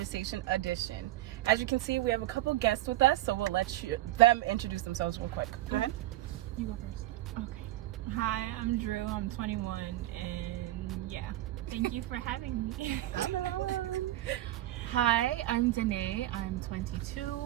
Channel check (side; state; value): left; quieter; 15.4 dB